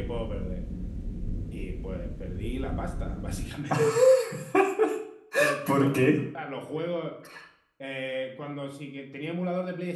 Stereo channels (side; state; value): both; identical; correlation 1.00